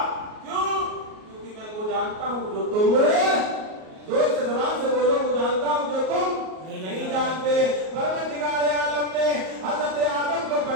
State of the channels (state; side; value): late; left; 38 ms